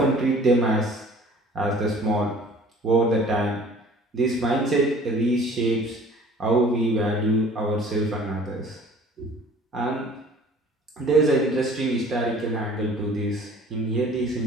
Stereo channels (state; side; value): normal; both; correlation 0.50